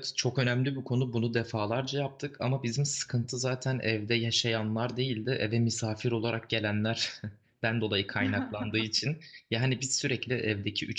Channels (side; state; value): both; identical; correlation 1.00